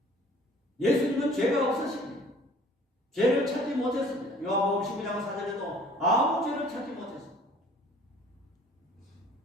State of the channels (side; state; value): both; normal; correlation 0.52